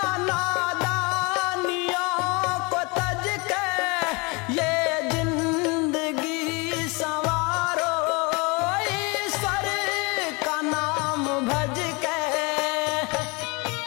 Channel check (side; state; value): right; quieter; 28.3 dB